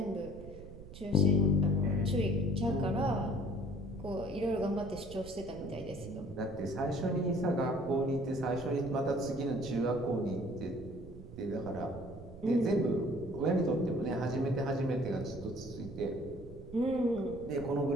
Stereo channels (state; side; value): noise; right; rumble, 15 dB below the sound